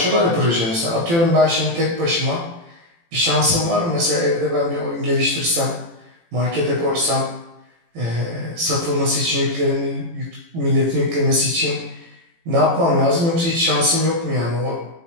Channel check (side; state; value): left; late; 18 ms